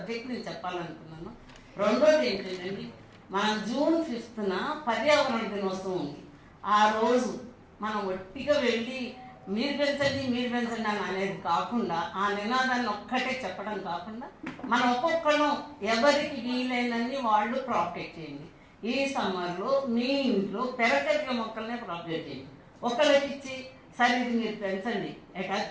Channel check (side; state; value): both; identical; correlation 1.00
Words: నేను చెప్పాలనుకున్నాను. రెండోది ఏంటంటే మనం June 5th పర్యావరణ దినోత్సవం ఉంది. ఆ రోజు మనం ఒట్టిగా వెళ్ళి మీరు పెంచండి అని అనేది కాకుండా ఆ నినాదాన్ని ఒక్కటే చెప్పడం కాకుండా మనం ఒక్కొక్కళ్ళం ఎవరికి వీలైనన్ని వాళ్ళు ప్రాపగేట్ చేయండి. ఈ సమ్మర్లో మీ ఇంట్లో పెరగలిగిన మొక్కలనే ప్రాపగేట్ చేయండి. ఒకళ్ళకి ఇచ్చి సరే ఇది మీరు పెంచండి,